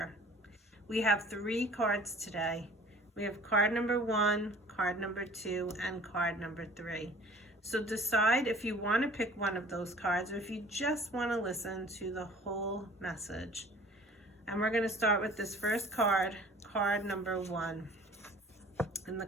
We have 3 cards today. We have card number 1, card number 2, and card number 3. So decide if you want to pick one of those cards or if you just want to listen to the whole message. And we're going to start with this first card, card number 1. And the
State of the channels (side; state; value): both; normal; correlation 0.48